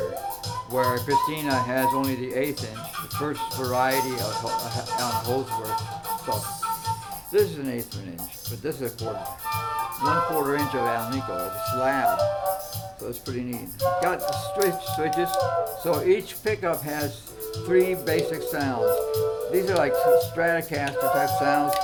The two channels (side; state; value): both; identical; correlation 1.00